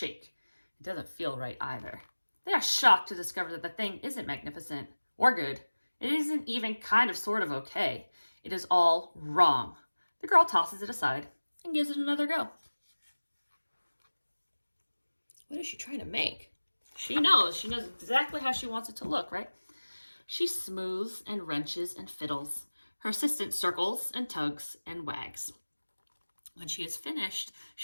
It doesn't feel right either. They are shocked to discover that the thing isn't magnificent or good. It isn't even kind of sort of okay. It is all wrong. The girl tosses it aside and gives it another go. What is she trying to make? She knows exactly how she wants it to look, right? She smooths and wrenches and fiddles. Her assistant circles and tugs and wags. When she is finished,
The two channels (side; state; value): both; inverted; correlation -1.00